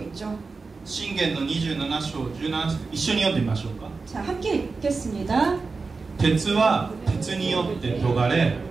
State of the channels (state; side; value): quieter; left; 4.2 dB